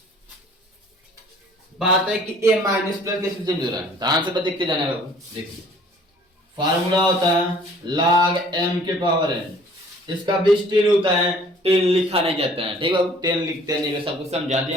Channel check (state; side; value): normal; both; correlation 0.54